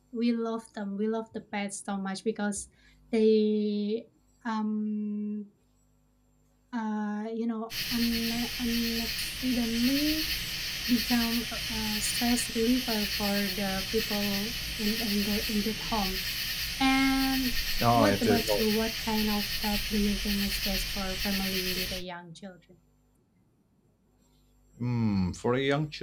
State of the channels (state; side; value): identical; both; correlation 1.00